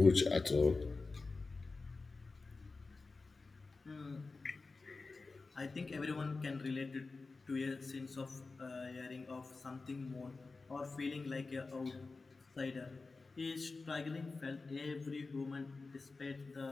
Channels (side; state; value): right; quieter; 3.9 dB